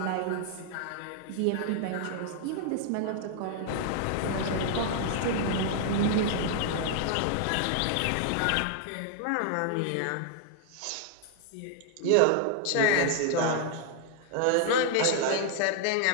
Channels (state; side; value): different; both; correlation 0.00